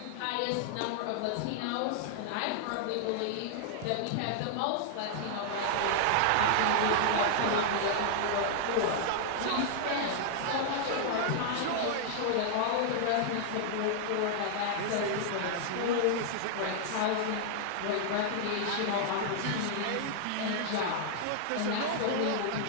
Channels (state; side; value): different; both; correlation -0.01